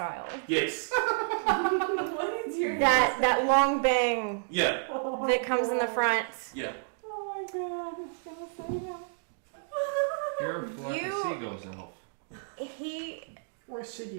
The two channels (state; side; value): silent; left; digital silence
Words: Yes. What is your That long bang Yeah. that comes in the front. Yeah. Oh my god, it's gonna say that. You're a flock You- of seagulls elf. He Where's